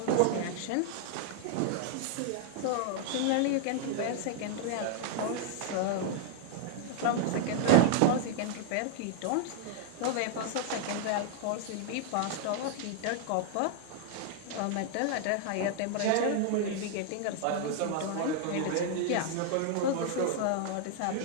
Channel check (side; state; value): both; different; correlation -0.01